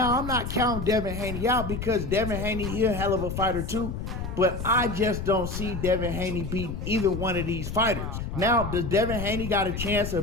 I'm not counting Devin Haney out because Devin Haney, he a hell of a fighter too. But I just don't see Devin Haney beating either one of these fighters. Now, does Devin Haney got a chance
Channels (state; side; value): noise; left; rumble, 5 dB below the sound